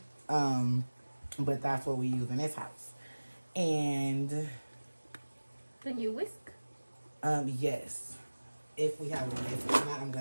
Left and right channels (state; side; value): inverted; both; correlation -1.00